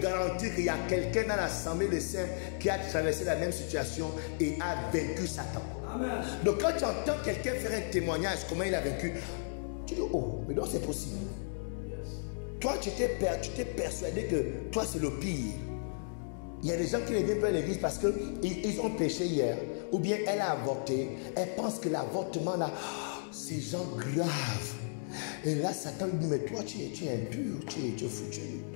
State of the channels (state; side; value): silent; right; digital silence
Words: garantir qu'il y a quelqu'un dans l'assemblée des saints qui a traversé la même situation et a vaincu Satan. Amen. Donc quand tu entends quelqu'un faire un témoignage, comment il a vaincu, tu dis, oh, mais non, c'est possible. Yes. Toi, tu t'es persuadé que toi, c'est le pire. Il y a des gens qui ne viennent pas à l'église parce qu'ils ont péché hier. Ou bien elle a avorté. Elle pense que l'avortement là, c'est genre grave. Et là, Satan lui dit, mais toi, tu es impur, tu es foutu.